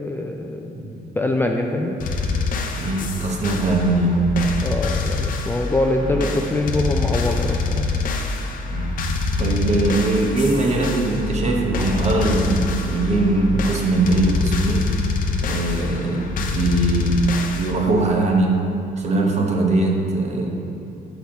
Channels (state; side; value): normal; both; correlation 0.60